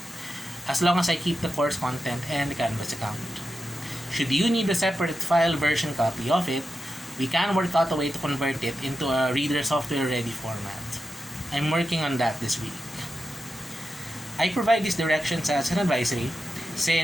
as long as I keep the course content and the Canvas account. Should you need a separate file version copy of it, we can work out a way to convert it into a reader software ready format. I'm working on that this week. I provide these directions as an advisory,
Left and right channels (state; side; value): normal; both; correlation 0.90